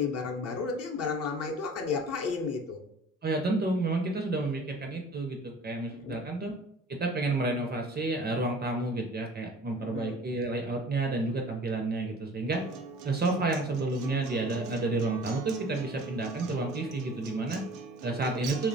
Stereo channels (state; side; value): normal; both; correlation 0.46